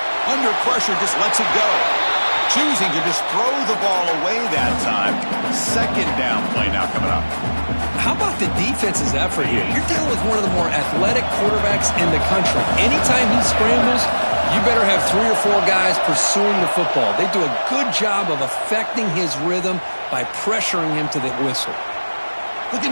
Under pressure, just lets it go. Choosing to just throw the ball away that time. Second down play now coming up. How about the defense's effort here? You're dealing with one of the more athletic quarterbacks in the country. Anytime he scrambles, you better have 3 or 4 guys pursuing the football. They do a good job of affecting his rhythm by pressuring him to the whistle. Looking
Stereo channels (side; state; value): both; inverted; correlation -1.00